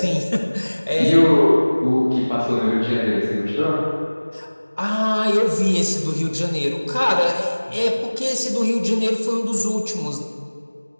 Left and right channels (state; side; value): inverted; both; correlation -1.00